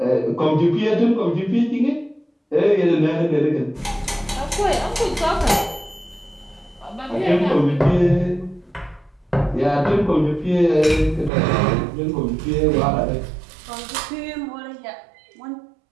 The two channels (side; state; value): left; drops out; at 11.3 s